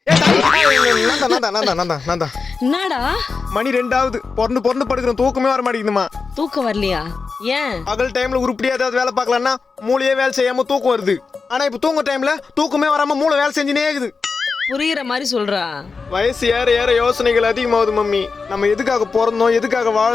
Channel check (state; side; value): quieter; right; 4.7 dB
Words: என்னடா மணி 2 பொறந்து படுக்கிறோம், தூக்கமே வர மாட்டேங்குதுமா. தூக்கம் வரலையா? ஏன்? பகல் டைம்ல உருப்படியா ஏதாவது வேலை பார்க்கலாம்னா மூளையே வேலை செய்யாம தூக்கம் வருது. ஆனா இப்ப தூங்க டைம்ல தூக்கமே வராம மூளை வேலை செஞ்சுனே இருக்குது. புரியுற மாதிரி சொல்றா. வயசு ஏற ஏற யோசனைகள் அதிகமாகுது மம்மி. நம்ம எதுக்காக பிறந்தோம், எதுக்காக